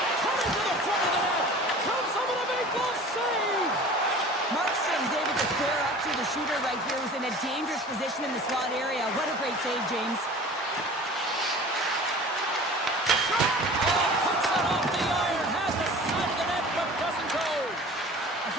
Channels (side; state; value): both; normal; correlation 0.42